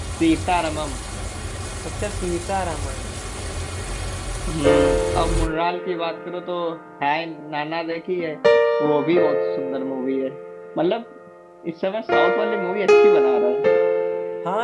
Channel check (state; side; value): identical; both; correlation 1.00